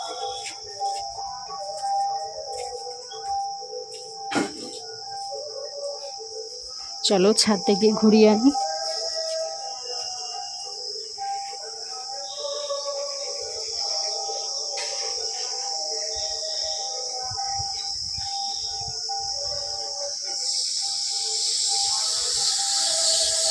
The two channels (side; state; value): both; identical; correlation 1.00